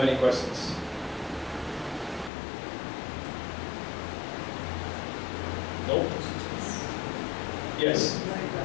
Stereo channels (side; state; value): right; drops out; at 2.3 s